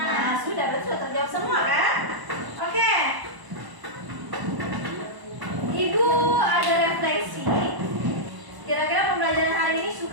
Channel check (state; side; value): late; left; 1.0 ms